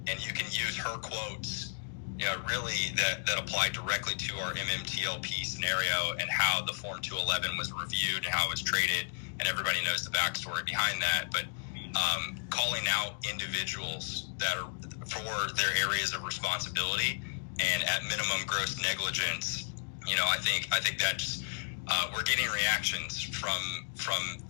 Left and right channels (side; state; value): right; silent; digital silence